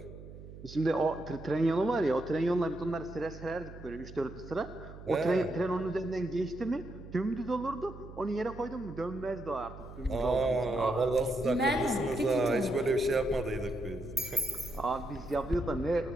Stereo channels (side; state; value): right; noise; hum, 15 dB below the sound